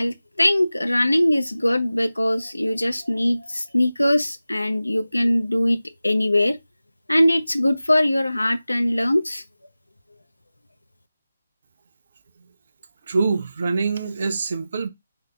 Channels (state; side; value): inverted; both; correlation -0.96